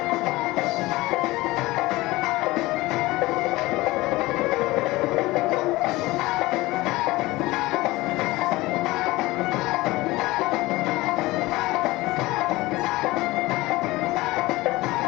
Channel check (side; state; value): right; quieter; 19.8 dB